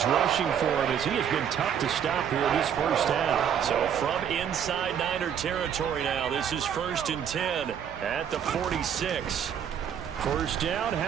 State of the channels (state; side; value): quieter; left; 8.5 dB